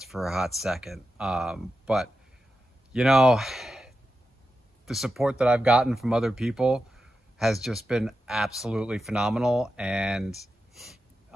for a hot second. But, you know, the support that I've gotten from other people has just been absolutely phenomenal, and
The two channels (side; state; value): both; normal; correlation 0.90